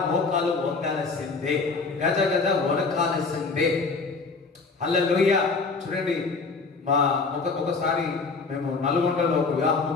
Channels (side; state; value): right; quieter; 4.3 dB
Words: మోకాలు వంగాల్సిందే, గజ గజ వణకాల్సిందే. హల్లెలూయా. చూడండి, ఒకసారి మేము నల్గొండలో ఒక వివాహం